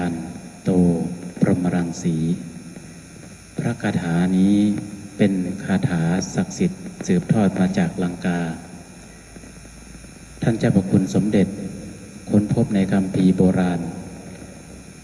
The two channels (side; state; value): both; identical; correlation 1.00